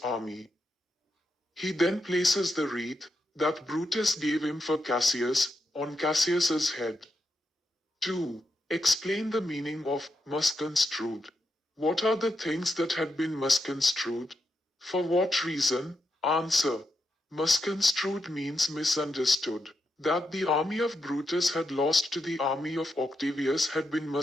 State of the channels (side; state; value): both; normal; correlation 0.84